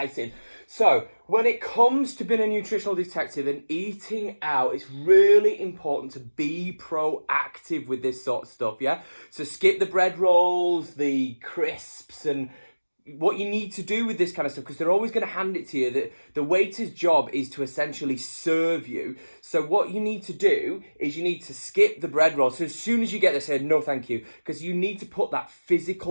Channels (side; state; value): both; inverted; correlation -1.00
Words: So, when it comes to being a nutritional detective and eating out, it's really important to be proactive with this sort of stuff, yeah? So skip the bread rolls, the crisps, and what you need to do with this kind of stuff, because they're always going to hand it to you. The waiter's job is to essentially serve you. So what you need to do is you need to skip the bread roll. So as soon as you get there, say no thank you, because you need to put that